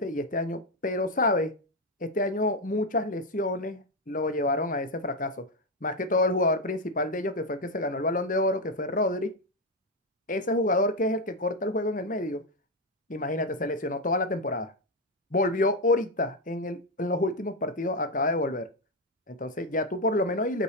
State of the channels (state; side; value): normal; both; correlation 0.06